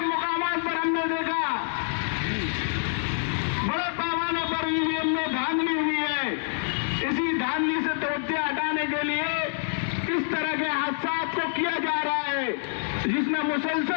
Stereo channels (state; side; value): silent; right; 60 dB below the other